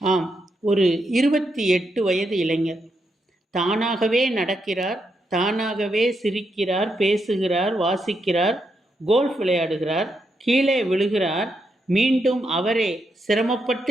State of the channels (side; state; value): both; normal; correlation 0.81